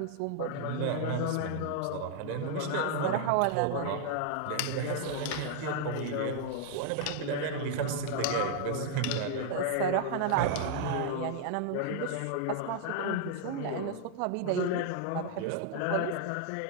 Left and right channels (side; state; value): both; different; correlation 0.00